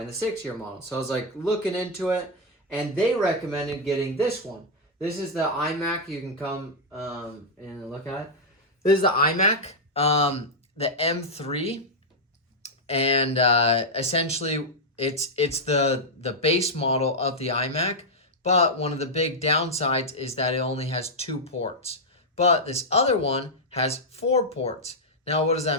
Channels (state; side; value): normal; both; correlation -0.03